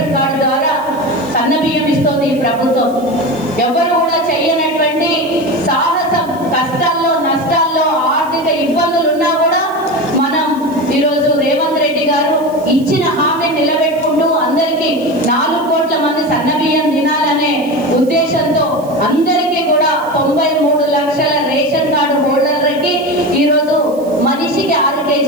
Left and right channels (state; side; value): noise; right; hiss, 23 dB below the sound